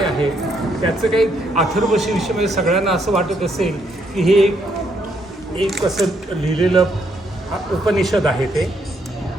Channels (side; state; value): both; normal; correlation 0.74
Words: आहे, त्याचं काही अथर्वशीर्षमध्ये सगळ्यांना असं वाटत असेल की हे एक असं लिहिलेलं उपनिषद आहे ते,